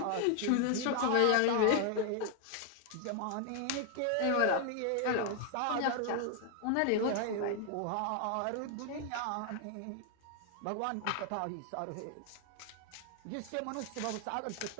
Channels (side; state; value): both; different; correlation 0.00